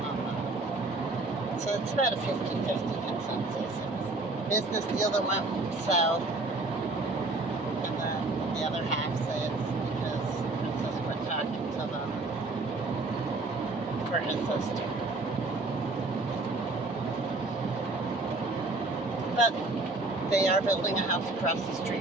on that. So it's about a 50-50 consensus. It's a business deal that went south, and then the other half say it's because Princess quit talking to them for his sister. But they are building a house across the street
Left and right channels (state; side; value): quieter; left; 3.2 dB